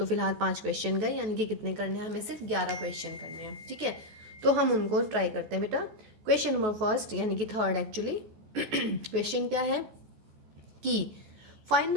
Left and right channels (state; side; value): late; left; 14 ms